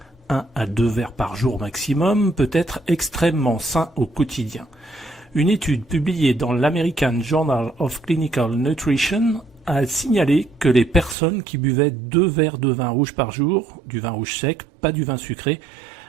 1 à 2 verres par jour maximum, peut être extrêmement sain au quotidien. Une étude publiée dans l'American Journal of Clinical Nutrition a signalé que les personnes qui buvaient 2 verres de vin rouge par jour, du vin rouge sec, pas du vin sucré,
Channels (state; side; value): drops out; left; at 11.2 s